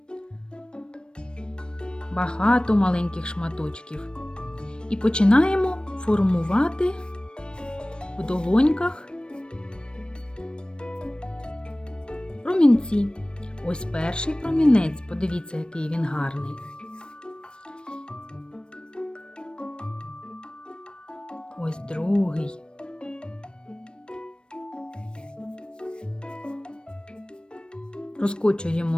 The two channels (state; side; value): late; right; 0.054 ms